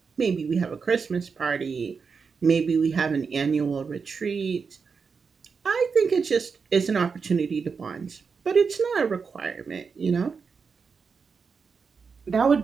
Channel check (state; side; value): quieter; left; 5.5 dB